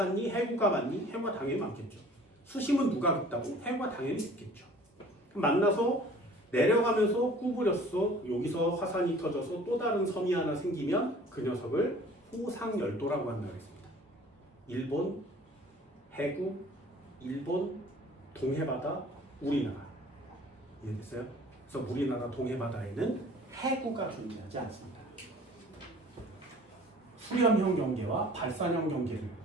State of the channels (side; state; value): both; normal; correlation 0.49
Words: 해구가 많니? 해구가 당연히 많겠죠. 수심은 누가 깊다고? 해구가 당연히 깊겠죠. 만나서 내려가면서 구부렸어. 여기서 화산이 터져서 또 다른 섬이 하나 생기면 그 녀석을 호상열도라고 한다고 했습니다. 일본, 해구, 일본, 동해바다, 우리나라. 이해됐어요? 그래서 우리나라 동해바다에는 해구가 존재하지 않습니다. 수렴형 경계와 발산형 경계를